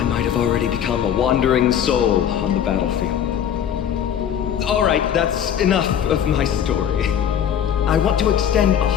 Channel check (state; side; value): quieter; right; 9.1 dB